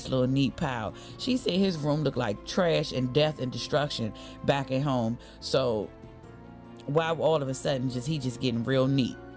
little neat pile. She said his room looked like trash and death and destruction back at home. So why all of a sudden he just getting real neat?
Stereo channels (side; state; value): both; identical; correlation 1.00